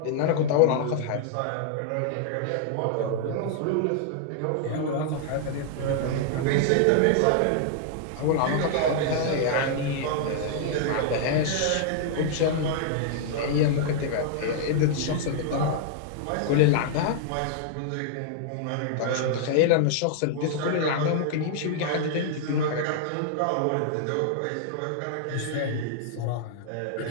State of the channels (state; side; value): different; both; correlation -0.01